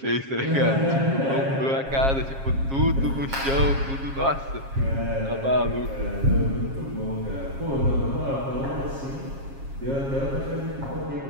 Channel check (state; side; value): late; left; 7.4 ms